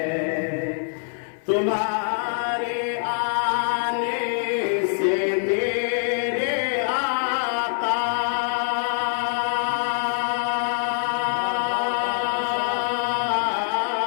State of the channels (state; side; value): silent; right; 57 dB below the other